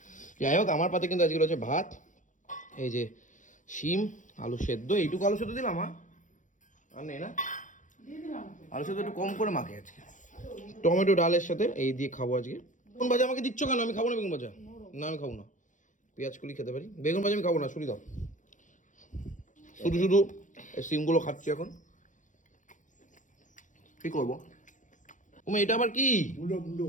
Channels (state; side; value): late; right; 0.37 ms